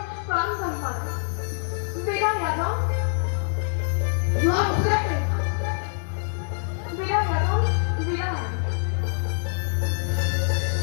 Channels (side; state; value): right; silent; 59 dB below the other